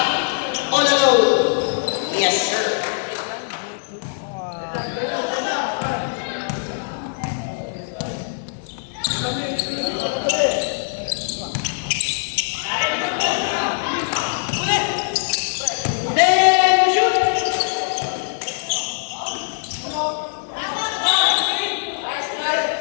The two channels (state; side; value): silent; right; 64 dB below the other